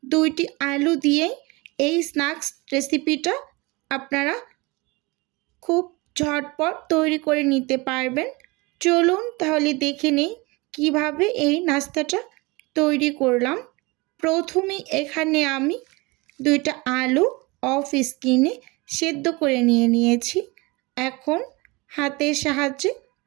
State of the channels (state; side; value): quieter; left; 25.0 dB